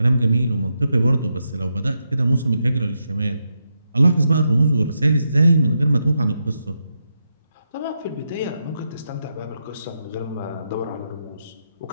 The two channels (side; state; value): both; inverted; correlation -0.84